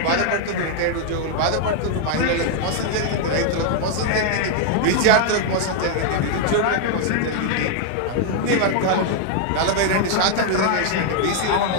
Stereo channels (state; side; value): different; both; correlation 0.00